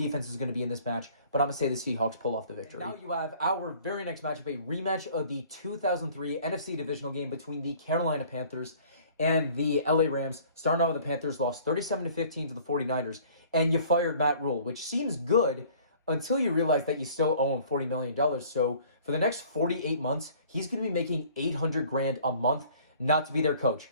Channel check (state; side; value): inverted; both; correlation -0.52